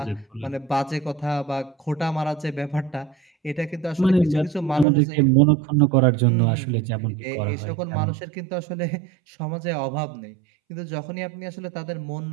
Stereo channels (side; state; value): left; drops out; at 4.9 s